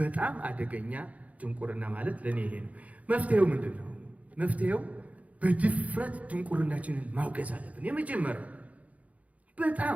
አደገኛ ድንቁርና ማለት ለኔ ይሄ ነው። መፍትሄው ምንድን ነው? መፍትሄው በድፍረት ድንቁርናችንን ማውገዝ አለብን። የመጀመሪያው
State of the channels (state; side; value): late; left; 0.069 ms